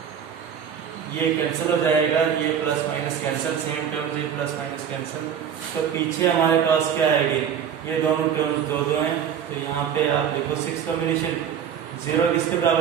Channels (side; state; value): left; quieter; 8.3 dB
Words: ये कैंसिल हो जाएगा, ये plus minus cancel, same terms ये प्लस माइनस कैंसिल। तो पीछे हमारे पास क्या आएगी, ये दोनों टर्म्स दो हैं, तो यहाँ पे आप देखो 6 कॉम्बिनेशन 0 किसके